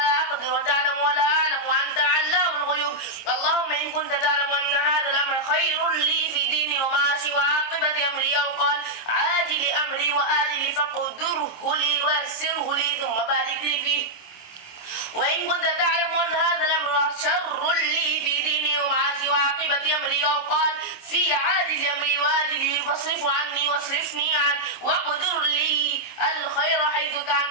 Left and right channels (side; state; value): right; late; 26 ms